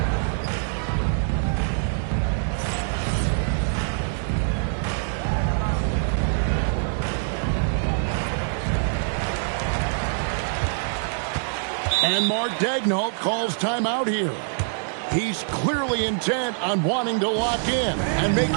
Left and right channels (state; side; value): silent; left; digital silence